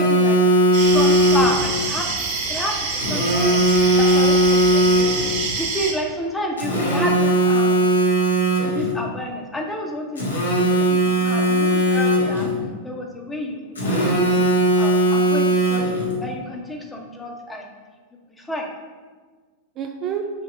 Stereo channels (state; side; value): normal; both; correlation 0.11